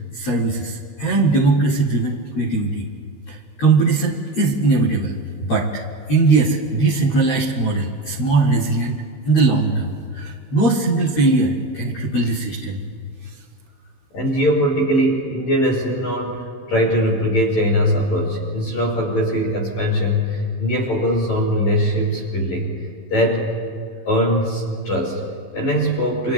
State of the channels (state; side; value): late; right; 16 ms